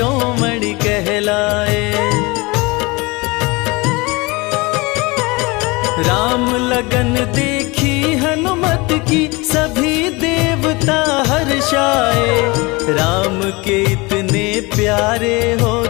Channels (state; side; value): quieter; right; 24.8 dB